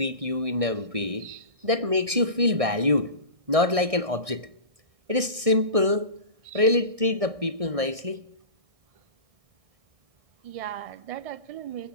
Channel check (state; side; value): late; left; 1.6 ms